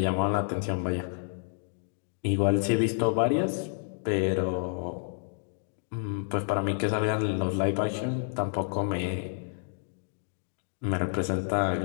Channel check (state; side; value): silent; right; digital silence